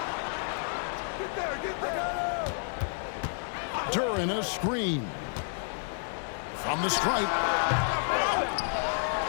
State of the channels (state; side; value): silent; right; digital silence